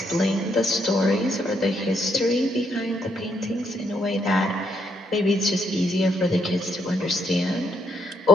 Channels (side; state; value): both; normal; correlation 0.75